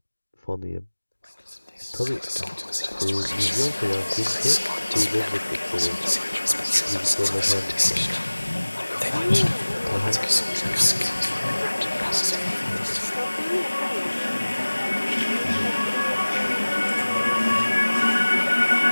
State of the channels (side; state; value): both; inverted; correlation -1.00